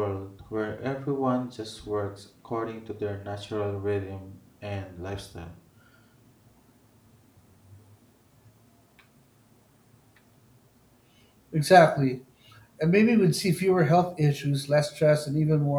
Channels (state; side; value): identical; both; correlation 1.00